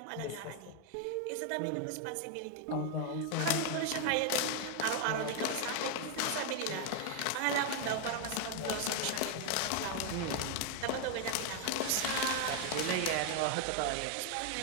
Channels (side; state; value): both; different; correlation 0.00